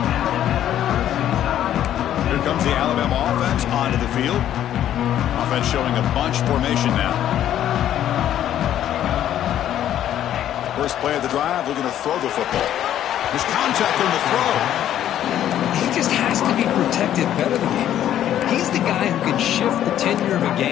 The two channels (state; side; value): quieter; right; 11.3 dB